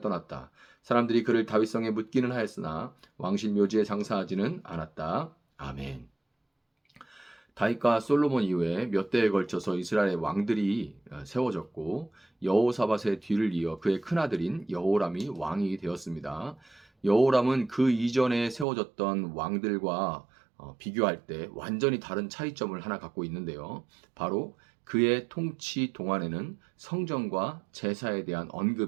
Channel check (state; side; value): drops out; left; at 18.7 s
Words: 떠났다. 사람들이 그를 다윗성에 묻기는 하였으나 왕실 묘지에 장사하지는 않았다. 아멘. 다윗과 솔로몬 이후에 몇 대에 걸쳐서 이스라엘의 왕들이 세워졌고 여호사밧의 뒤를 이어 그의 큰아들인 여호람이 왕이 되었습니다. 여호람은 그 이전에 세워졌던 왕들과 비교할 때 완전히 다른 차이점을 하나 갖고 있는데요. 바로 그의 통치 동안에는 성전과 제사에 대한